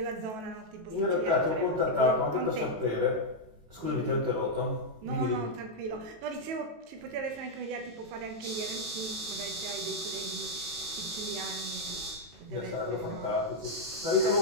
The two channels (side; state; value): left; late; 18 ms